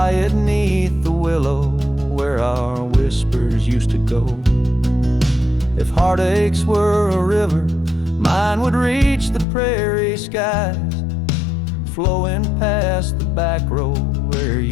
neath the willow where our whispers used to go. If heartaches were a river, Mine would reach the prairie skies, flowing past the back road where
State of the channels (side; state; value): right; drops out; at 9.5 s